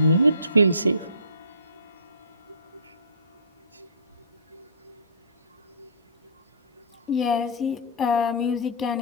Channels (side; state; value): both; inverted; correlation -0.38